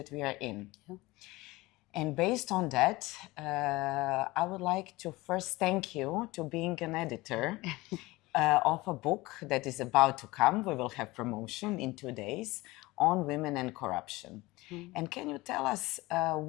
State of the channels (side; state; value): right; quieter; 20.7 dB